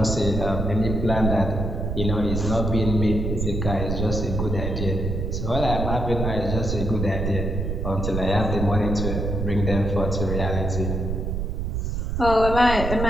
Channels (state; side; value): noise; right; rumble, 2 dB below the sound